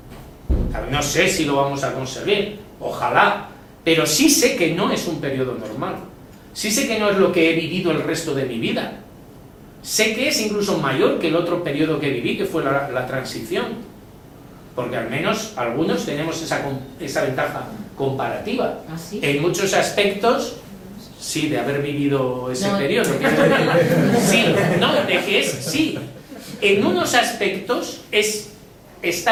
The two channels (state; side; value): identical; both; correlation 1.00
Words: No sé si lo vamos a conseguir, ojalá, pero sí sé que no es un periodo normal. Sí sé que no es lo que he vivido el resto de mi vida. Sé que es incluso mayor que el otro periodo que viví, que fue la transición. Porque al menos algunos tenemos esa ventaja comparativa. ¿Ah, sí? En muchos aspectos, sí, de haber vivido ese periodo. Sí, no, de que es, sí. En unos aspectos